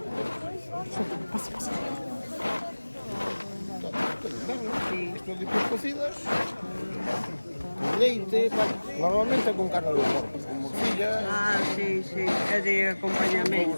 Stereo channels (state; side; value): inverted; both; correlation -1.00